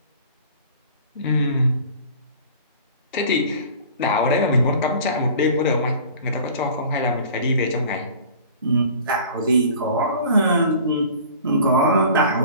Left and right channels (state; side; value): inverted; both; correlation -0.44